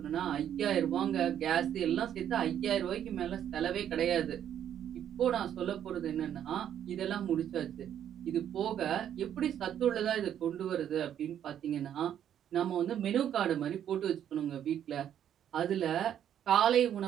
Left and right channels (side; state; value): left; quieter; 9.9 dB